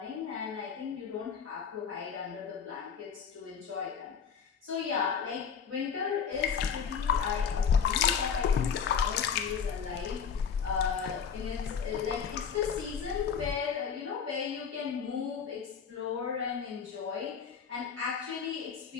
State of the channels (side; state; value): right; quieter; 6.8 dB